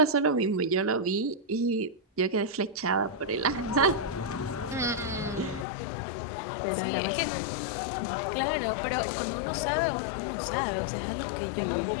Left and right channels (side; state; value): right; drops out; at 5.7 s